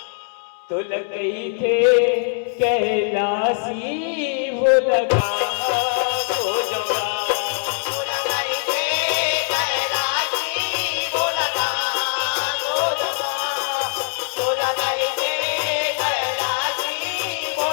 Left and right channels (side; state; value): right; silent; 64 dB below the other